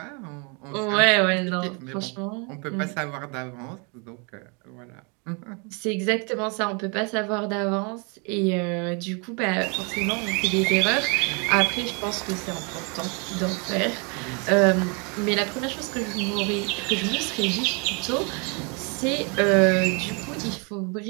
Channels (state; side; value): quieter; left; 33.7 dB